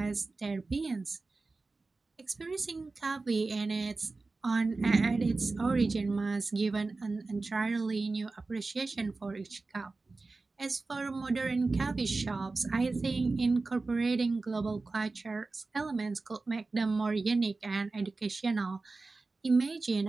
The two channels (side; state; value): left; quieter; 3.7 dB